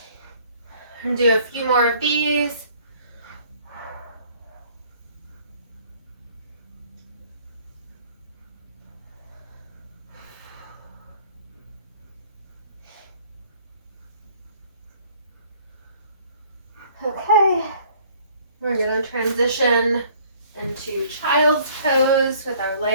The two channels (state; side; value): inverted; both; correlation -0.57